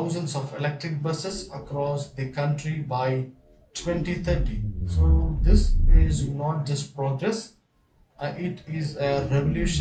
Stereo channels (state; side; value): identical; both; correlation 1.00